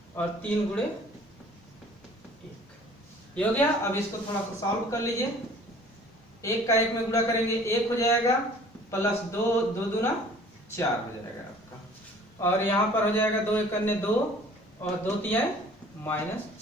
और 3 गुणे 1, ये हो गया। अब इसको थोड़ा सा सॉल्व कर लीजिए। 1 का 1 में गुणा करेंगे 1 हो जाएगा, प्लस 2 दूना 4 हो जाएगा आपका, और यहाँ पर हो जाएगा 2 एकन्ने 2 और 2 तिहाई माइनस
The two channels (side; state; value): both; normal; correlation 0.51